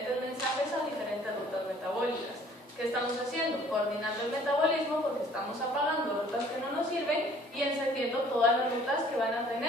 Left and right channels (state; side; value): normal; both; correlation 0.55